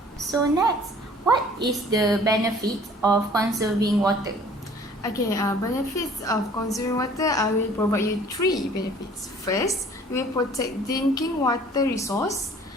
So next, what is the benefit of conserving water? Okay, benefits of conserving water, I will provide you 3 benefits. First, it will protect drinking water resource.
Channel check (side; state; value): both; normal; correlation 0.52